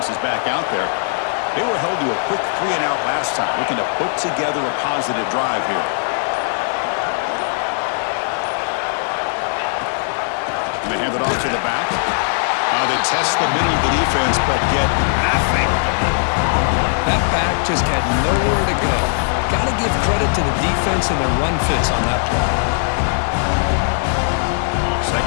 is back out there. They were held to a quick 3-and-out last time, looking to put together a positive drive here. And they hand it off to the back. They test the middle of the defense, but get nothing. That back just had nowhere to go. Got to give credit to the defense and their run fits on that play.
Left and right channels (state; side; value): silent; right; digital silence